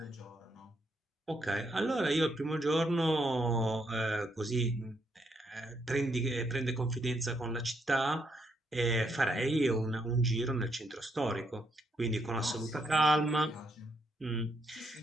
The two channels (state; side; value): normal; both; correlation 0.76